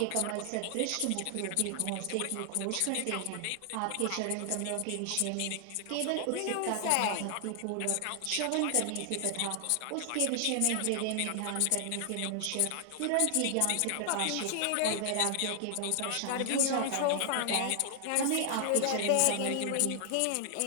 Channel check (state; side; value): different; both; correlation 0.00